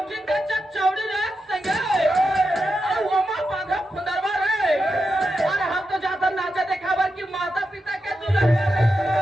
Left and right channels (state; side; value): normal; both; correlation 0.88